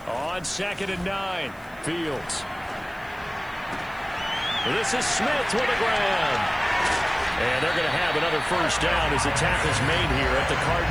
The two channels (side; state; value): right; noise; hiss, 27 dB below the sound